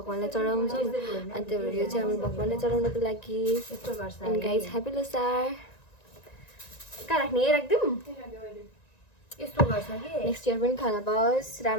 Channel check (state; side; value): late; right; 1.9 ms